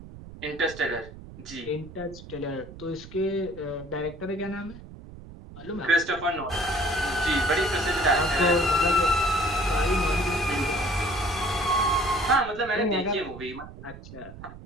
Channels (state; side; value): noise; right; rumble, 16 dB below the sound